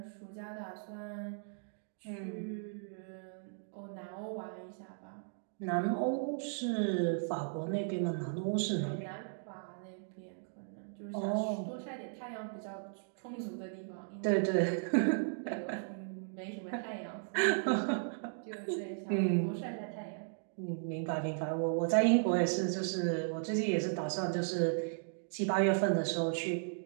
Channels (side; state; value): left; silent; digital silence